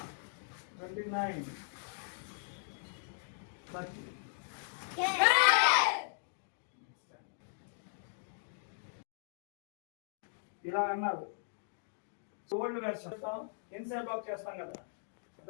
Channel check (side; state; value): right; silent; digital silence